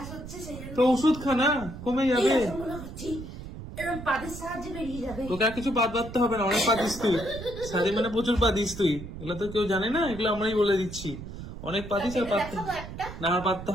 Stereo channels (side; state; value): right; noise; rumble, 11 dB below the sound